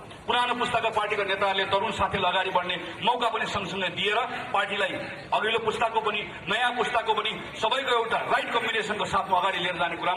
पुरानो पुस्ताका पार्टीका नेताहरूले तरुण साथीलाई अगाडि बढ्ने मौका पनि सँगसँगै दिएर पार्टीलाई अघिल्लो पुस्ताको पनि नयाँ पुस्ताको पनि सबैको एउटा राइट कम्बिनेसनको साथमा अगाडि लिएर जाने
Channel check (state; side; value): identical; both; correlation 1.00